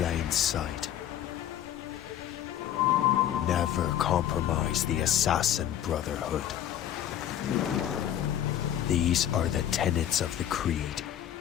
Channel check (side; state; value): right; quieter; 10.9 dB